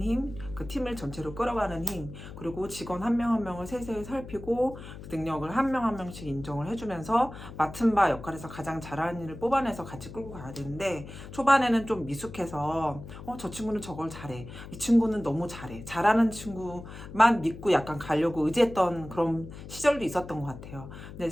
힘, 그 팀을 전체로 끌어가는 힘, 그리고 직원 한 명 한 명을 세세히 살피고 그 능력을 한 명 한 명씩 인정을 해주면서 맡은 바 역할에서 가장 잘하는 일을 뽑아내서 같이 끌고 가야 되는데, 초반에는 좀 미숙해서 저 친구는 저걸 잘해, 이 친구는 너무 잘해, 잘하는 친구만 믿고 약간 가려고 의지했던 그런 시절도 있었던 것 같아요. 근데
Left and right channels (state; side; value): noise; left; hum, 13 dB below the sound